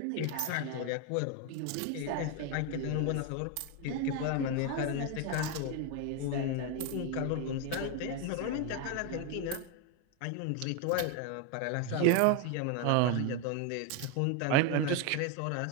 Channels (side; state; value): both; different; correlation 0.01